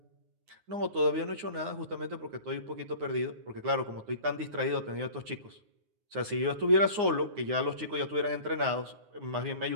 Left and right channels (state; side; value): late; left; 9.6 ms